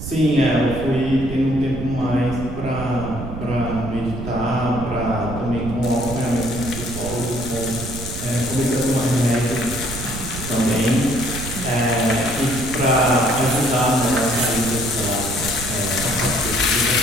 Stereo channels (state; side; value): noise; right; rumble, 8 dB below the sound